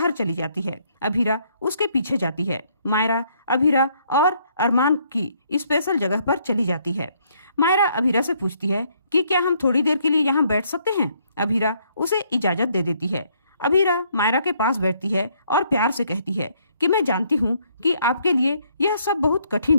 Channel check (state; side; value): inverted; both; correlation -0.68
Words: चली जाती है। अभीरा उसके पीछे जाती है। मायरा अभीरा और अरमान की स्पेशल जगह पर चली जाती है। मायरा अभीरा से पूछती है कि क्या हम थोड़ी देर के लिए यहाँ बैठ सकते हैं? अभीरा उसे इजाजत दे देती है। अभीरा मायरा के पास बैठती है और प्यार से कहती है कि मैं जानती हूँ कि आपके लिए यह सब बहुत